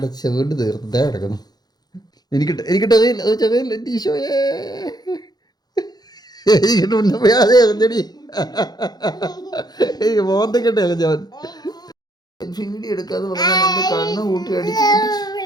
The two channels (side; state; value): right; late; 0.19 ms